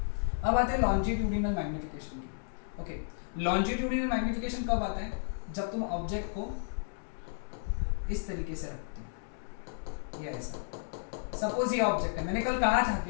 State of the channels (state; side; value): silent; right; digital silence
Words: अब आते हैं लॉन्जिट्यूडिनल मैग्निफिकेशन की। ओके, लॉन्जिट्यूडिनल मैग्निफिकेशन कब आता है, जब तुम ऑब्जेक्ट को इस तरीके से रखते हो, ये ऐसा। सपोज ये ऑब्जेक्ट है, मैंने कल कहा था